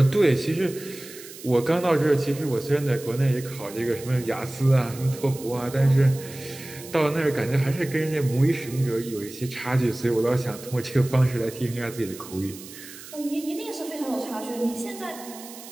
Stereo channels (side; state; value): right; noise; hiss, 16 dB below the sound